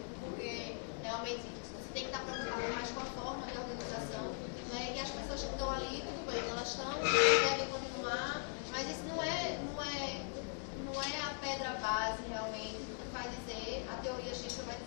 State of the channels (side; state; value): right; silent; 51 dB below the other